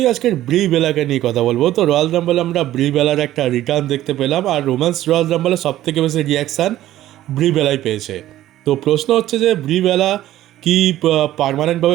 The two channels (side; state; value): left; quieter; 13.9 dB